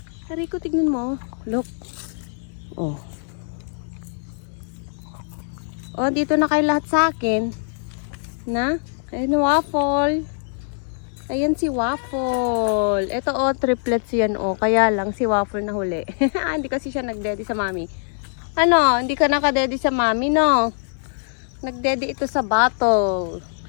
Rico, tignan mo. Look. Dito na kayo lahat sa akin. Ayan, Waffle. Ayan si Waffle. Ito, triplets yan, Kaya lang si Waffle na huli. Hindi kasi siya nagdeddy sa mami. Hindi ka nakadeddy sa mami, no? Nagdeddy ito sa bottle.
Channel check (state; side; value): silent; right; digital silence